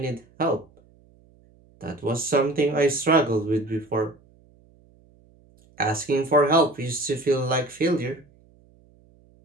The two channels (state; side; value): noise; right; hum, 30 dB below the sound